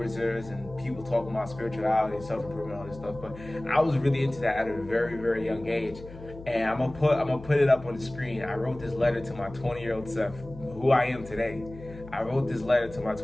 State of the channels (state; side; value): noise; left; hum, 16 dB below the sound